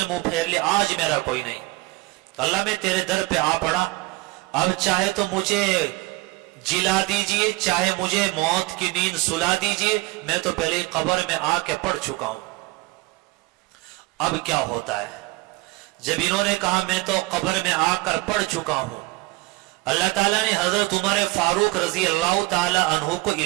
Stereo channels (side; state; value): left; quieter; 22.1 dB